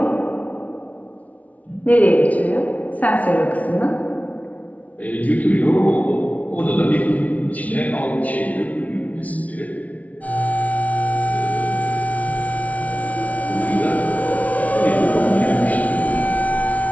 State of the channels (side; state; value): right; late; 0.069 ms